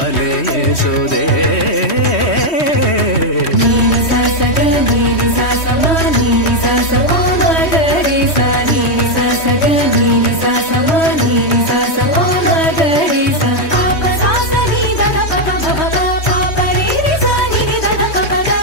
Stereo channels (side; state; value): right; late; 3.1 ms